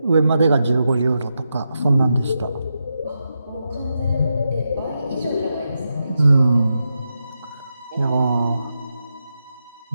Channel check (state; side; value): inverted; both; correlation -0.86